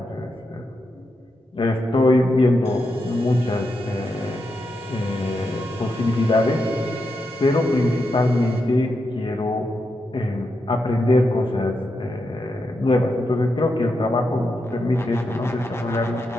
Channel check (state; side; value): normal; both; correlation 0.85